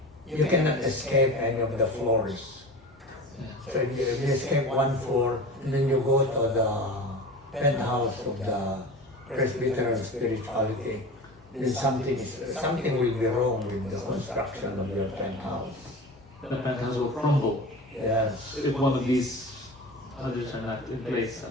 you cannot escape any of the floors. So if you escape one floor, and then you go to the penthouse of the Presbyterian spirituality, then something will be wrong with the construction of your penthouse. The penthouse will crumble Yes. if one of these others are not in place.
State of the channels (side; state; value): both; normal; correlation 0.33